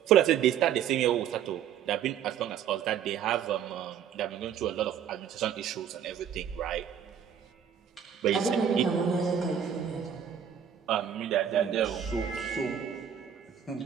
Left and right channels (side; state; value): left; quieter; 8.7 dB